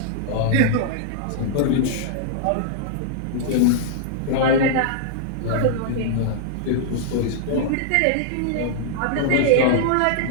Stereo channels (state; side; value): different; both; correlation -0.01